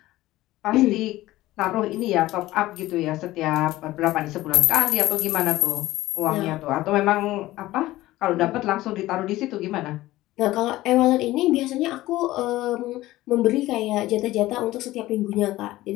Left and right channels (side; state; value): right; quieter; 16.8 dB